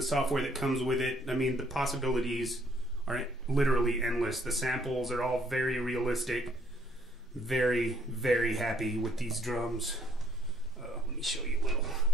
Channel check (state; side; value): normal; both; correlation 0.64